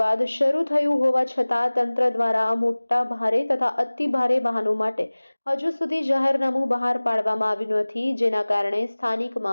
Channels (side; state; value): both; inverted; correlation -1.00